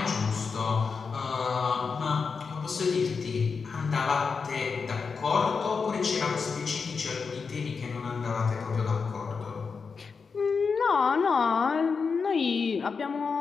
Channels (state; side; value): quieter; right; 5.2 dB